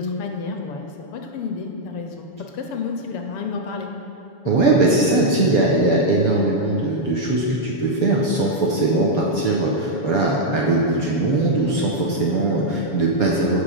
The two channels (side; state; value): right; late; 7.1 ms